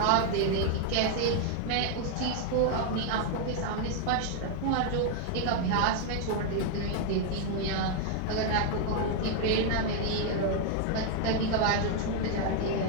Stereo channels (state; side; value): different; both; correlation 0.00